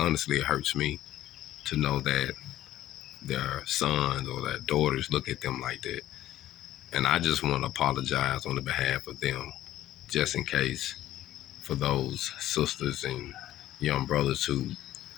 it hurts me to know that their sons or their daughters look at them like that. And I just want to apologize on the behalf of them, just in case, for those sisters and young brothers who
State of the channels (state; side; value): quieter; right; 13.6 dB